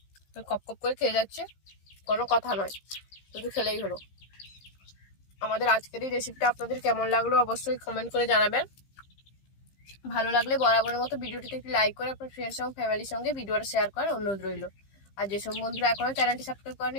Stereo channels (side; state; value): right; late; 15 ms